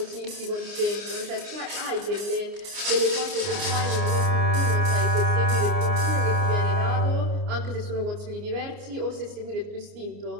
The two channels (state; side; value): late; left; 29 ms